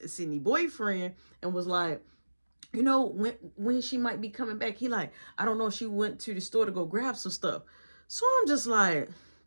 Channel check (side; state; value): both; inverted; correlation -1.00